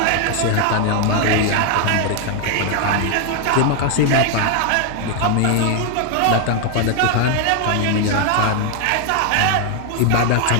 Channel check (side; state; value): both; different; correlation 0.00